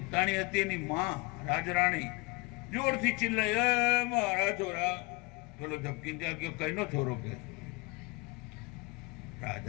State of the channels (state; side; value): quieter; right; 25.7 dB